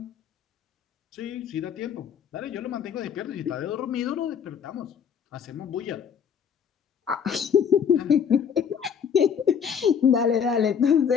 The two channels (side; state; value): right; quieter; 7.4 dB